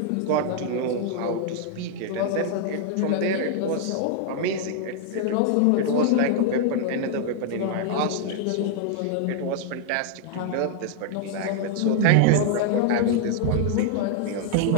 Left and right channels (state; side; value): different; both; correlation 0.00